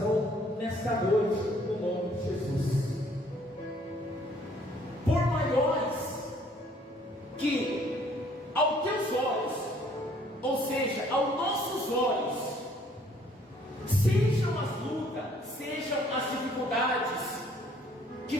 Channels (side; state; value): both; normal; correlation 0.61